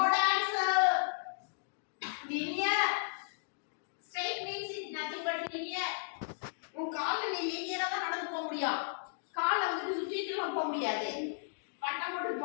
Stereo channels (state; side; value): silent; right; digital silence